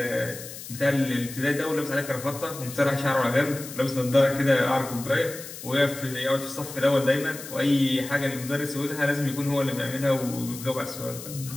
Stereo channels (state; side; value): noise; left; hiss, 12 dB below the sound